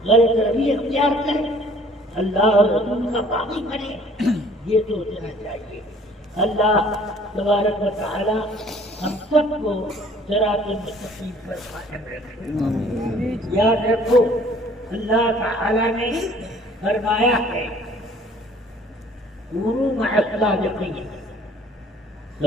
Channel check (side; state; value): both; normal; correlation 0.55